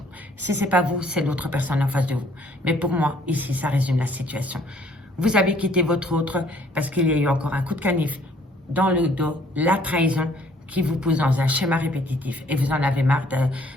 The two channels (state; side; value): normal; both; correlation 0.61